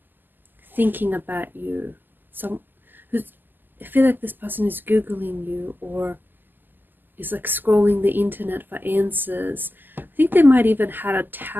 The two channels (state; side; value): late; left; 0.090 ms